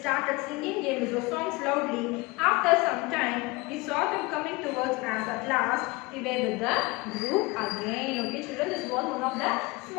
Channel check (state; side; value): quieter; right; 23.9 dB